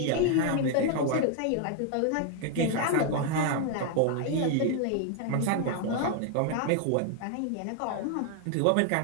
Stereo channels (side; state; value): both; different; correlation 0.00